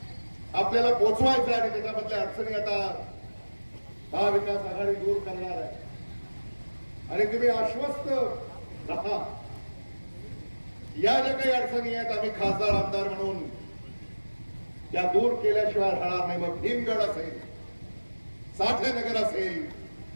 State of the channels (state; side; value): inverted; both; correlation -1.00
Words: आपल्याला पोचवायचा आणि त्याच्यामधल्या अडचणी आता महाविकास आघाडी दूर करणार आहे. आणि तुम्ही आश्वस्त राहा. या ज्या काही अडचणी आहेत आम्ही खासदार आमदार म्हणून त्या दूर केल्याशिवाय राहणार नाही. मग भीमगड असेल, साठे नगर असेल,